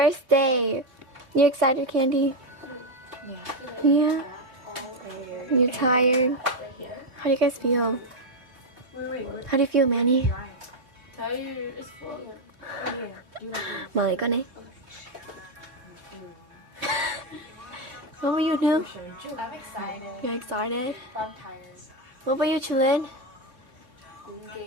day. You excited, Candy? Yeah. Yeah? You're tired? How do you guys feel? How do you feel, Manny? Tired as fuck. Mời con đi. What about you, New? I'm excited. You're excited? I'm tired. What about you, Chilin?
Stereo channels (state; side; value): late; left; 3.9 ms